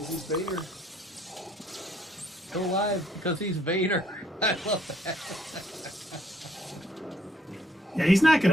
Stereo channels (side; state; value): both; normal; correlation 0.65